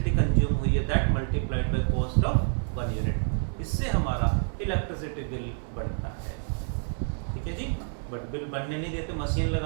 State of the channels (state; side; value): silent; left; 59 dB below the other